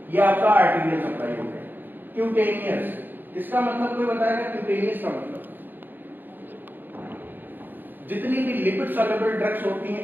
ये आपका आर्टीरियल सप्लाई हो गया। क्यूटेनियस, इसका मतलब कोई बताएगा? क्यूटेनियस का मतलब जितनी भी लिपिड सॉल्युबल ड्रग्स होती हैं,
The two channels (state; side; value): late; left; 0.091 ms